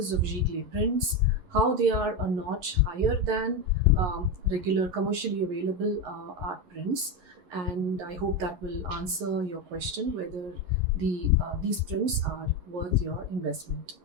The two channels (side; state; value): left; late; 11 ms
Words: of Giclée prints, how they are a notch higher than regular commercially available art prints, and I hope that will answer your question whether these prints are worth your investment.